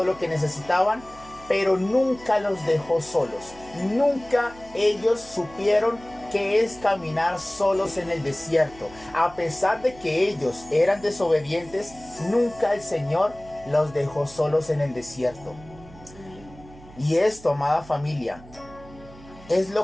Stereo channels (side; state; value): right; noise; hum, 21 dB below the sound